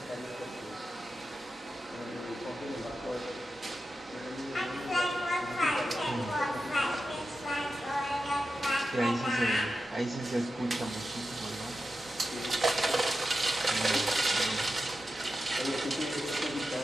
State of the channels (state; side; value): normal; both; correlation 0.91